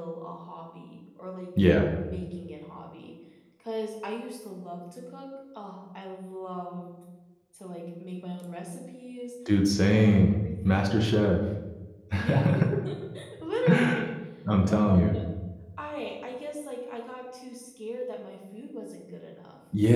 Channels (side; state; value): both; identical; correlation 1.00